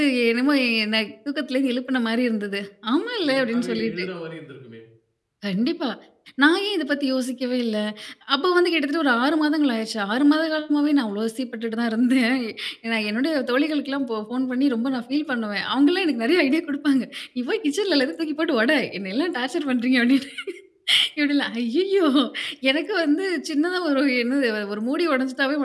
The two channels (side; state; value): both; identical; correlation 1.00